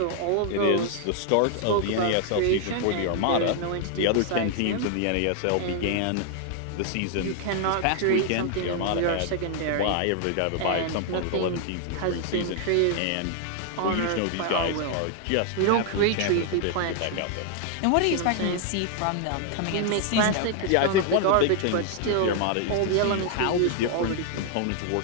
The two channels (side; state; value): both; different; correlation 0.00